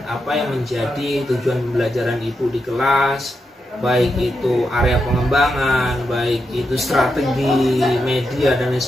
apa yang menjadi tujuan pembelajaran Ibu di kelas, baik itu area pengembangan, baik itu strategi, media dan lain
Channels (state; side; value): normal; both; correlation 0.85